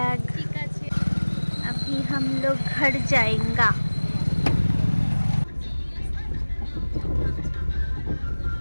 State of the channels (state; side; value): inverted; both; correlation -1.00